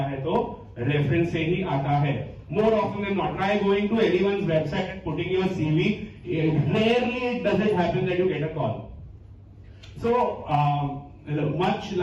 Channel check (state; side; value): identical; both; correlation 1.00